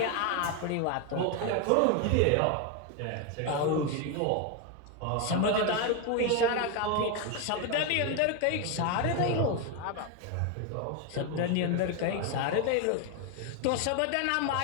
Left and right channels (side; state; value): both; different; correlation 0.02